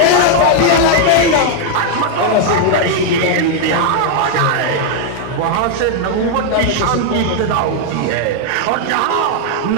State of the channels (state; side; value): different; both; correlation 0.00